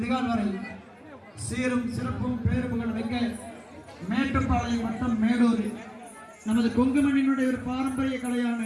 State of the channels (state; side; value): identical; both; correlation 1.00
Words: வரை சீரும் சிறப்பும் பேருப்புகள் வைக்க மேட்டுப்பாளையம் மற்றும் மேலூர் நமது கொங்குமண்ணினுடைய ஒரு பாரம்பரிய கலையான